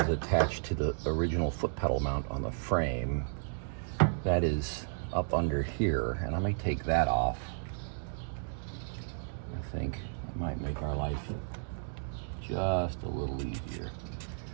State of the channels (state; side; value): silent; left; digital silence